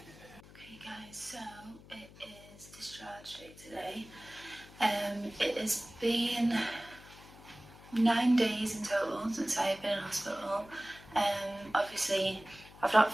Okay guys, so it is discharge day today. It has been 9 days in total since I've been in hospital. Obviously I've not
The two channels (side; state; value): left; noise; hum, 20 dB below the sound